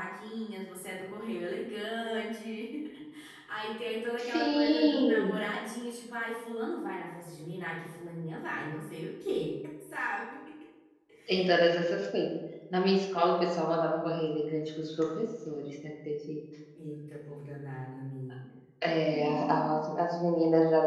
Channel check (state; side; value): identical; both; correlation 1.00